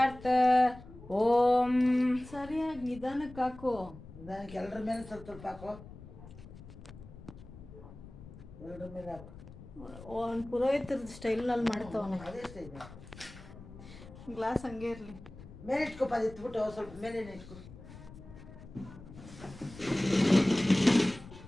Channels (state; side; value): noise; left; rumble, 17 dB below the sound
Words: ॐ ಸರಿಯಾಗಿ ನಿಧಾನಕ್ಕೆ ಹಾಕು. ನಿಧಾನಕ್ಕೆ ಎಲ್ಲರ ಮೇಲೆ ಸ್ವಲ್ಪ ಸ್ವಲ್ಪ ಹಾಕೋ. ಎಲ್ಲರ ಮೇಲೆ ಹಾಕು. ಒಂದು ಪುರೋಹಿತರ ಸ್ಟೈಲ್ನಲ್ಲಿ ಮಾಡ್ತಾವನೆ. ಅದೇ ಸ್ಟೈಲ್. ಗ್ಲಾಸ್ ಹಂಗೆ ಇರಲಿ. ಮೇಲೆ ಇಟ್ಕೊಪ್ಪ, ಅದು ಇಟ್ಬಿಟ್ಟು ಸ್ವಲ್ಪ ಮೇಲೆ ಇಟ್ಕೊ.